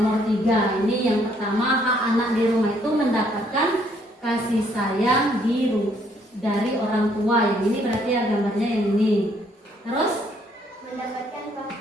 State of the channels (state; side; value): normal; both; correlation 0.67